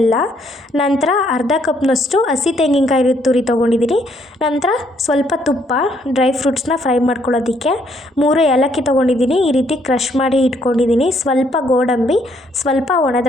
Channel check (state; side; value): normal; both; correlation 0.69